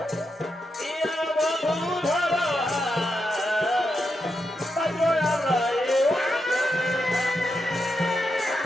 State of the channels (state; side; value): normal; both; correlation 0.85